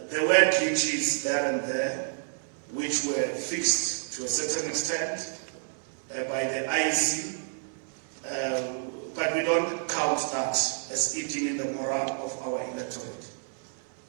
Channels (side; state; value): left; silent; 58 dB below the other